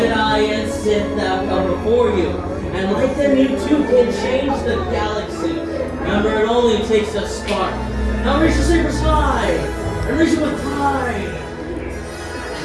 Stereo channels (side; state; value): both; identical; correlation 1.00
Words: and Sith that come before you. And like them, you too can change the galaxy. Remember, it only takes a spark. Now raise your sabers high. And raise them with pride.